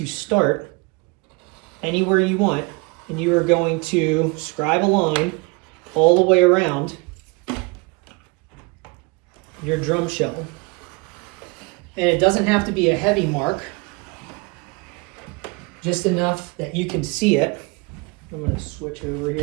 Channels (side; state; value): left; quieter; 28.1 dB